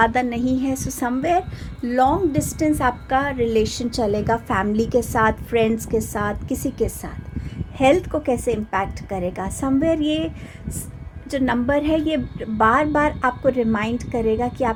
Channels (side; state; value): both; identical; correlation 1.00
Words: नहीं है। सो समवेयर लॉन्ग डिस्टेंस आपका रिलेशन चलेगा फैमिली के साथ, फ्रेंड्स के साथ, किसी के साथ। हेल्थ को कैसे इम्पैक्ट करेगा? समवेयर ये जो नंबर है ये बार बार आपको रिमाइंड करेगा कि